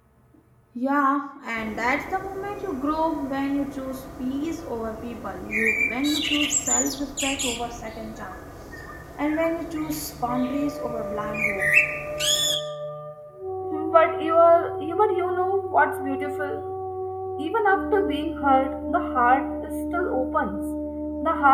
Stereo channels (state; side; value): identical; both; correlation 1.00